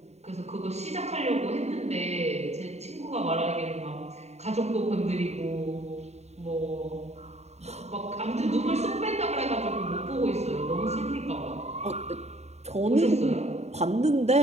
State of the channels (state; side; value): late; left; 0.32 ms